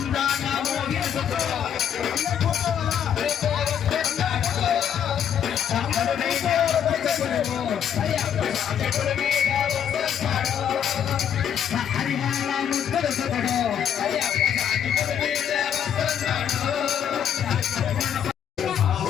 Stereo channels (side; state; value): right; quieter; 8.9 dB